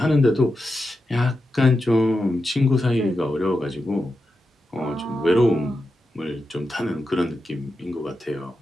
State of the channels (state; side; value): normal; both; correlation 0.89